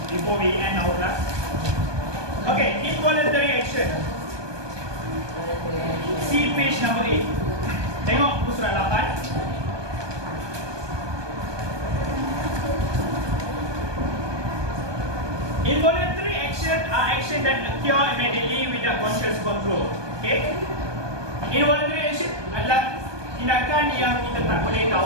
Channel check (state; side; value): late; left; 1.2 ms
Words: Before we end our class. Okay, involuntary action. See page number 8. Tengok buku surat 8. Involuntary action are action that occur immediately without conscious control. Okay? Involuntary action adalah tindakan yang kita tak boleh